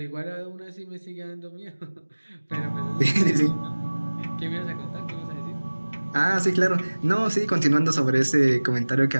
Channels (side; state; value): both; inverted; correlation -1.00